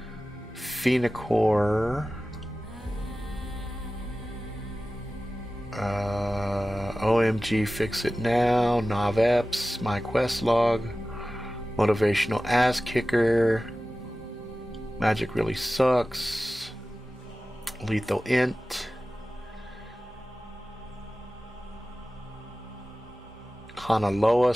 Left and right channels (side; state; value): both; normal; correlation 0.96